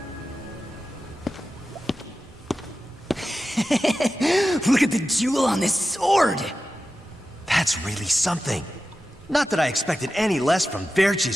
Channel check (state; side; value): normal; both; correlation 0.93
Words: Look at the jewel on this sword! That's really something. Not that I expected any less from